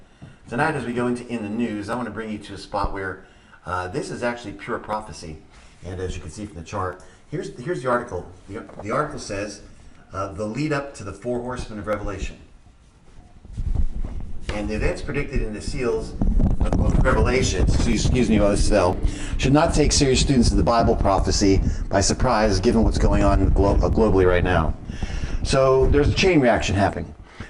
Tonight, as we go into In the News, I want to bring you to a spot where this is actually pure prophecy. And as you can see from the chart, here's the article. The article says, the lead up to the four horsemen of Revelation. And the events predicted in the seals of the book of Revelation, excuse me while I spell, should not take serious students of the Bible prophecy by surprise, given what's going on globally right now. So there's a chain reaction happening.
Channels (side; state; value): both; identical; correlation 1.00